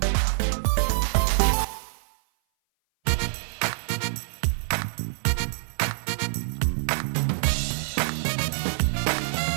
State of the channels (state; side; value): silent; left; 57 dB below the other